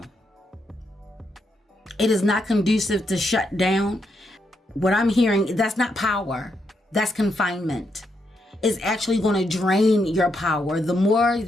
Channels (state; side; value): normal; both; correlation 0.80